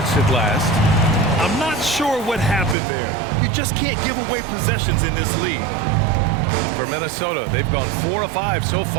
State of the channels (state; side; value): drops out; left; at 2.8 s